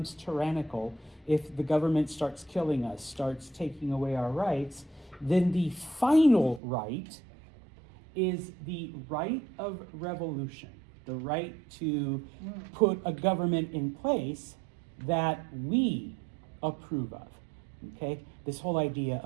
tyrannical, if the government starts killing us, starts taking away our rights, then the final right is the right of revolution, the right to put a government in place that we approve of, okay? This whole idea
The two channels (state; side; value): drops out; left; at 6.6 s